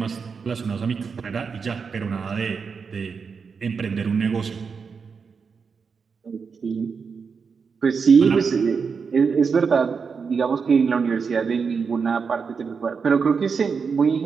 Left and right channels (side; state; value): left; quieter; 5.6 dB